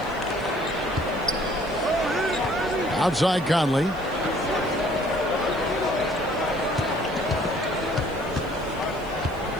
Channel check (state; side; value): noise; left; hiss, 25 dB below the sound